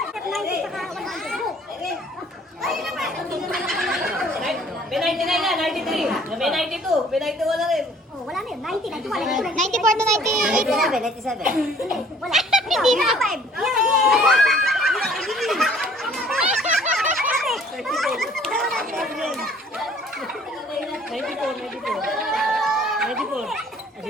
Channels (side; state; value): both; normal; correlation 0.56